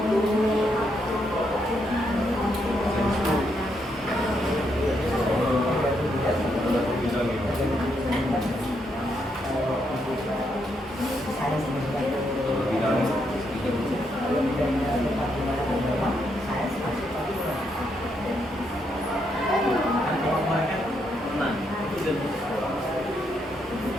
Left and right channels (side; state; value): both; normal; correlation 0.78